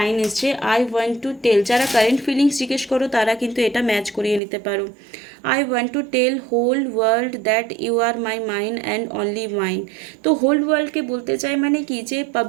এসছে। আই ওয়ান্ট টু টেল, যারা কারেন্ট ফিলিংস জিজ্ঞেস করো তারা কিন্তু এটা ম্যাচ করিয়ে নিতে পারো। I want to tell whole world that you are my mind and only mind. তো হোল ওয়ার্ল্ডকে বলতে চাই মানে কি, যে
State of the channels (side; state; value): left; drops out; at 4.4 s